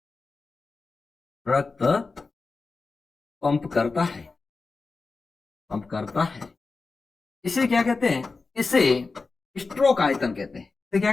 रक्त पंप करता है। इसे क्या कहते हैं, इसे स्ट्रोक आयतन कहते हैं। इसे क्या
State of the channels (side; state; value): right; quieter; 4.1 dB